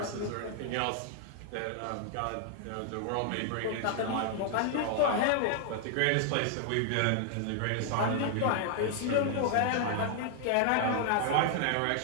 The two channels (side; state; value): both; different; correlation 0.00